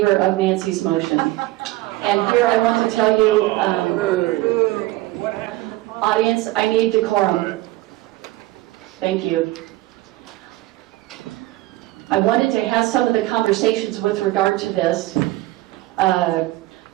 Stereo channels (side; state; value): left; quieter; 17.9 dB